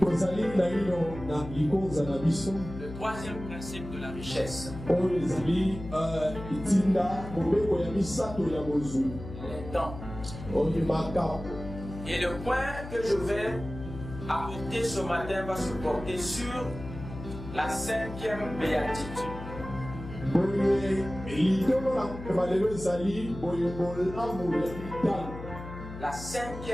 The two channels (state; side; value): noise; left; hum, 11 dB below the sound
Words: troisième principe de la richesse. Les dons. Et le point que je vais apporter ce matin va se porter sur la cinquième béatitude. La